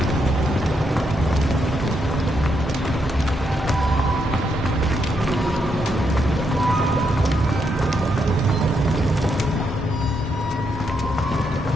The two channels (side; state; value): both; normal; correlation 0.79